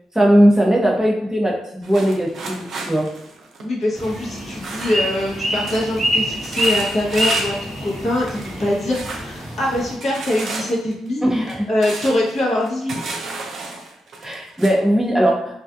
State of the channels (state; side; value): normal; both; correlation 0.89